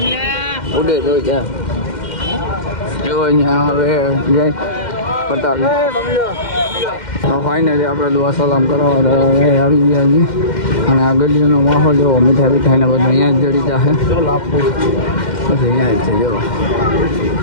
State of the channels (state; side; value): late; right; 2.1 ms